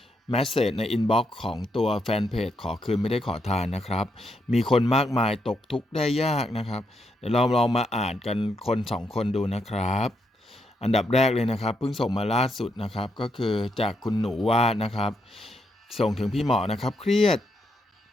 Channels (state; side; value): normal; both; correlation 0.79